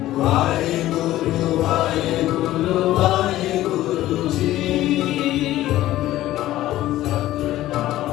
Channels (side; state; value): right; quieter; 14.8 dB